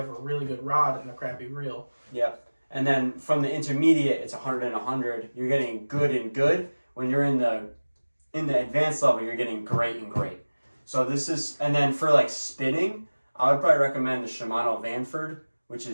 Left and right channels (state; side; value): inverted; both; correlation -1.00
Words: a really good rod and a crappy reel. Yep. And then from the intermediate, it's 100 and 100. You're getting good and good. When you're in the advanced level, you're getting great and great. So this is, and then for like spinning, I would probably recommend the Shimano Vanford, which